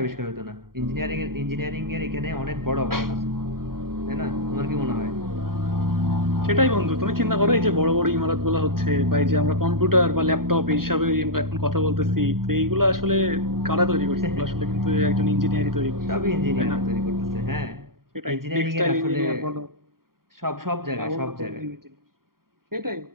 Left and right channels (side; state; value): left; late; 0.93 ms